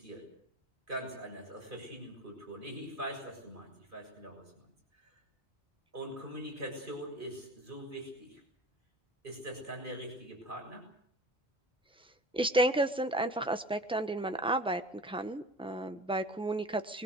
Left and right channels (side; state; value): both; normal; correlation 0.39